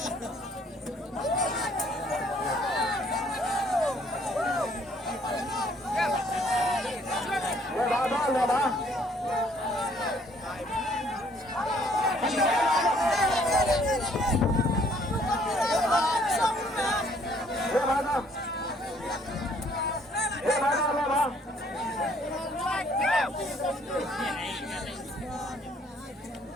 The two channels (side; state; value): both; normal; correlation 0.62